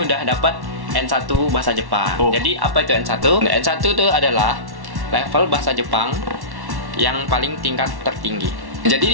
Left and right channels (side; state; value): left; late; 1.1 ms